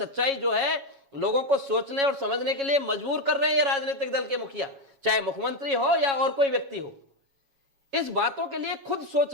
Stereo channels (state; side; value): late; left; 7.3 ms